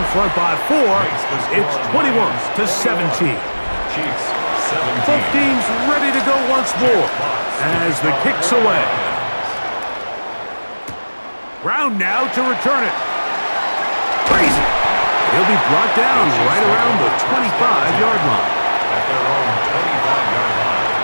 front by 4. It's 21-17. Both teams ready to go once more as the kick's away. Brown now to return it. Crazy. He'll be brought down right around the 25-yard line. At their own 25-yard line.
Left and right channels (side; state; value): both; inverted; correlation -1.00